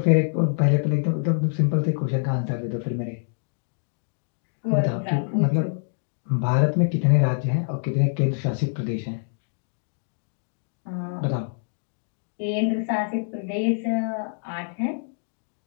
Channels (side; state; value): right; silent; digital silence